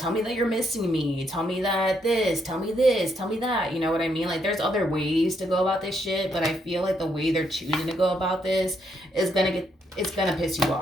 me that you're missing me. Tell me that tell me this, tell me that, you know what I mean? There's other ways to go about this shit, but I feel like the way they're choosing to go about this is it's gonna piss you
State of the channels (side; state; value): both; normal; correlation 0.75